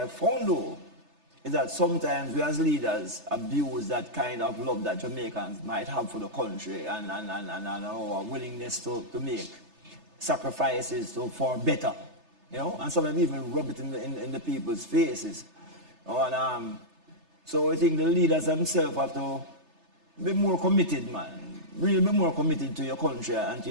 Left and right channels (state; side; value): late; left; 3.3 ms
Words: found though is that sometimes we as leaders abuse that kind of love that Jamaicans might have for the country and our willingness to make sacrifices for better, and sometimes even rub it in the people's faces. And so I think the leaders themselves have to be more committed, man. Really be more committed to your country and to